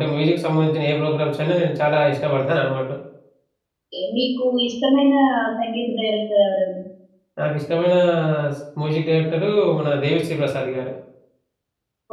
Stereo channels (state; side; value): identical; both; correlation 1.00